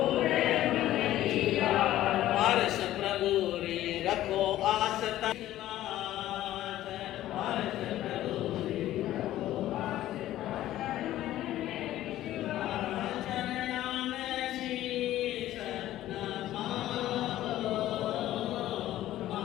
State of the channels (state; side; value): quieter; right; 14.0 dB